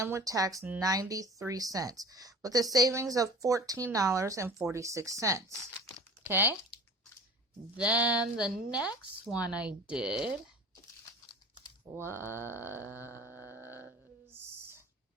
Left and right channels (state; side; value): normal; both; correlation 0.41